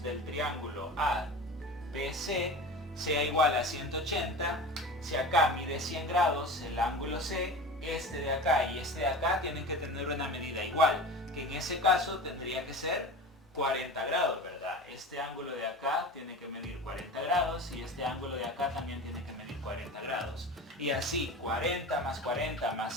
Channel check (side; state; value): both; normal; correlation 0.33